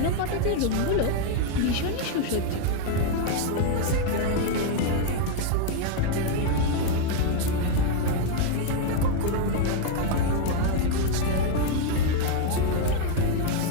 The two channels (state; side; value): different; both; correlation 0.00